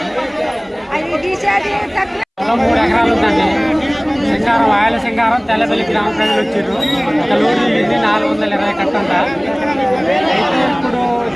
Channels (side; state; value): both; identical; correlation 1.00